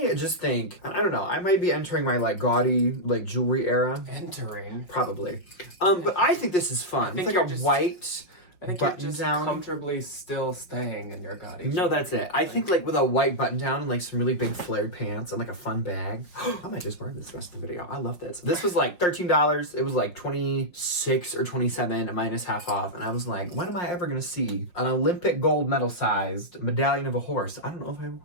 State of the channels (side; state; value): right; late; 5.6 ms